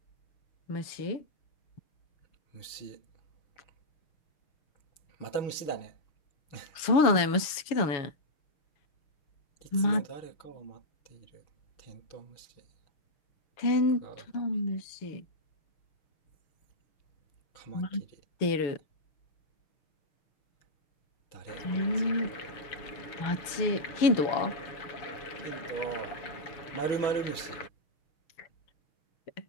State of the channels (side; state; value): right; late; 7.0 ms